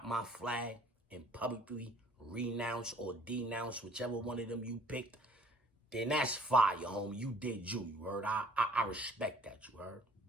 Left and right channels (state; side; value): normal; both; correlation 0.56